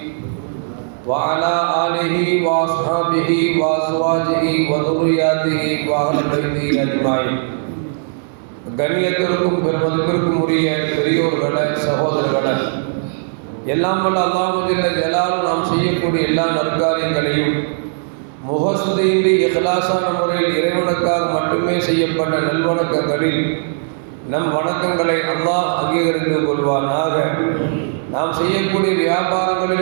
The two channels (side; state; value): left; silent; digital silence